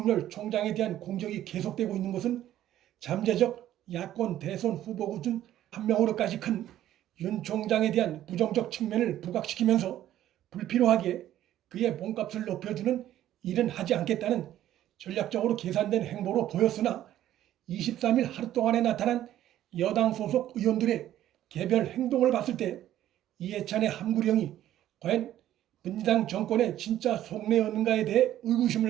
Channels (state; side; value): quieter; left; 12.6 dB